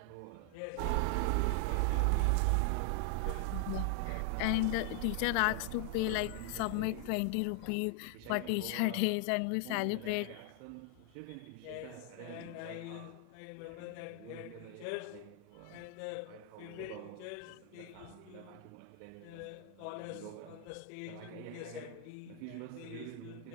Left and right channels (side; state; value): both; different; correlation 0.00